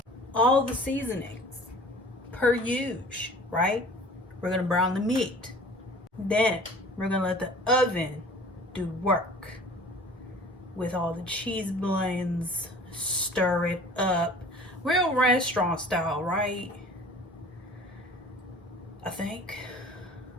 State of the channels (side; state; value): both; normal; correlation 0.46